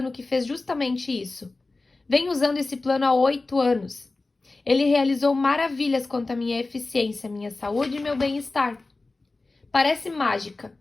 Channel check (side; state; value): right; quieter; 3.3 dB